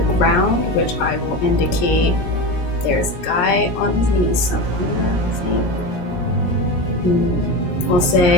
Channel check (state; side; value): late; right; 17 ms